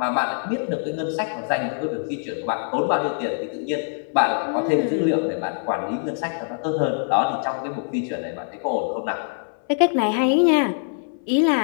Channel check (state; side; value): silent; right; 63 dB below the other